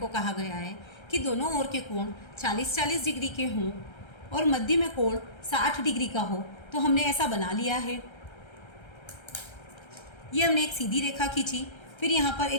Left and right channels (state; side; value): late; right; 1.3 ms